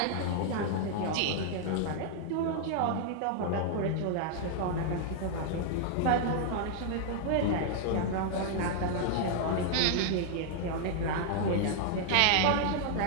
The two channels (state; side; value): different; both; correlation 0.00